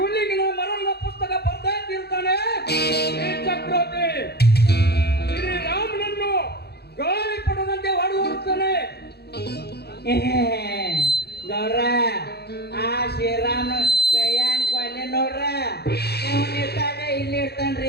ಮರಣದ ಪುಸ್ತಕ ಬರ್ತಾ ಇರ್ತಾನೆ ಈ ಚಕ್ರವರ್ತಿ. ಶ್ರೀರಾಮನನ್ನು ಗಾಳಿ ಪಡದಂತೆ ಹೊಡೆದುತ್ತಾನೆ. ಗೌಡ್ರ ಆ ಶ್ರೀರಾಮ ಕೈಯಾನ್ ಕೊಲ್ಲಿ ನೋಡ್ರ ಇವನ್ ಇರ್ತಾನೆ ಇಲ್ಲಿ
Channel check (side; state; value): right; late; 0.47 ms